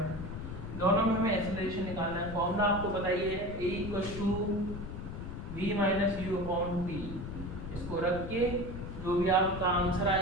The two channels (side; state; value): left; noise; rumble, 8 dB below the sound